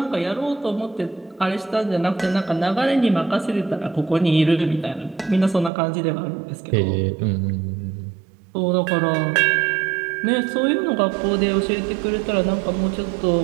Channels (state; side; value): drops out; left; at 5.7 s